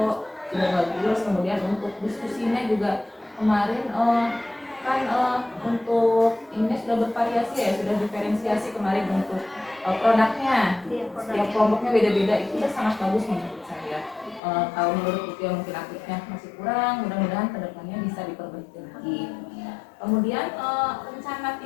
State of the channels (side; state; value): right; drops out; at 14.4 s